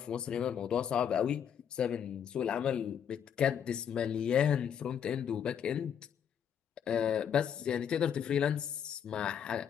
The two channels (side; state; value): right; quieter; 8.4 dB